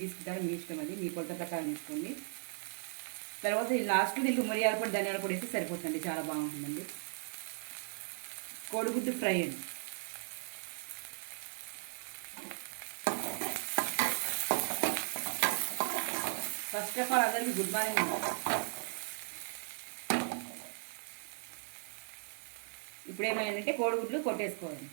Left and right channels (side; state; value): left; silent; 53 dB below the other